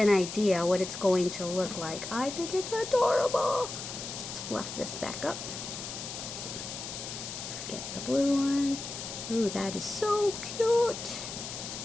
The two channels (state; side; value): noise; left; hiss, 8 dB below the sound